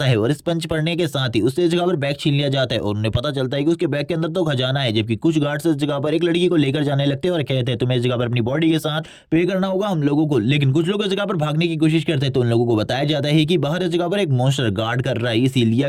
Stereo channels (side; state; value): both; identical; correlation 1.00